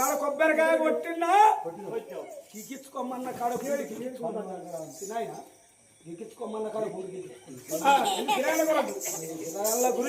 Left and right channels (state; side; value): identical; both; correlation 1.00